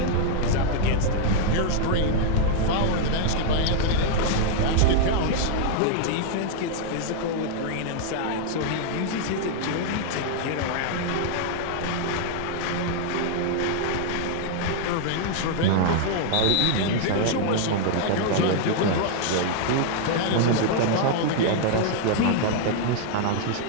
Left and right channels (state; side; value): different; both; correlation -0.01